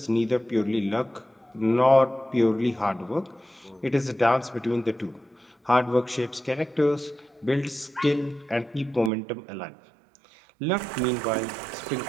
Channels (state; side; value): drops out; left; at 9.1 s